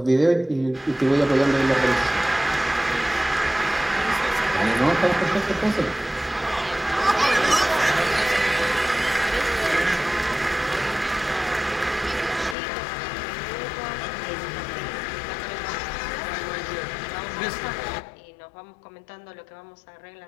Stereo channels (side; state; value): right; drops out; at 12.6 s